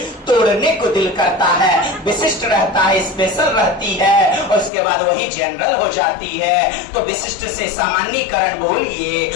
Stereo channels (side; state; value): right; drops out; at 4.7 s